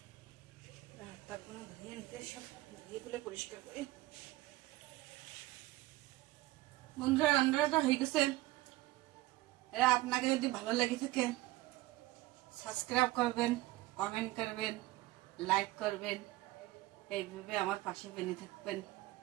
তারপরে ধুয়ে নিতে সব ধুয়ে তুলে পরিষ্কার করি। বন্ধুরা রান্নাটা হয়ে গেছে। এরা আপনাকে যদি ভালো লেগে থাকে সাবস্ক্রাইব করবেন, কমেন্ট করবেন, লাইক করবেন, এইভাবে আমার পাশে বেঁধে থাকবেন।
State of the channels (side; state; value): left; quieter; 18.5 dB